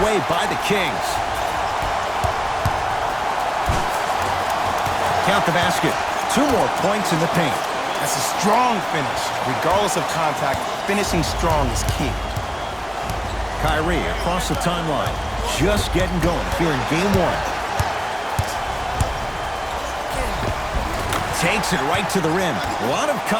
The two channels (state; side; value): identical; both; correlation 1.00